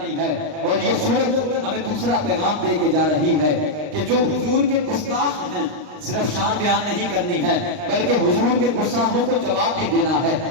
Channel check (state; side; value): late; left; 39 ms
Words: ہے. اور یہ سورت ہمیں دوسرا پیغام دے کے جا رہی ہے کہ جو حضور کے گستاخ ہیں, صرف شان بیان نہیں کرنی ہے بلکہ حضور کے گستاخوں کو جواب بھی دینا ہے.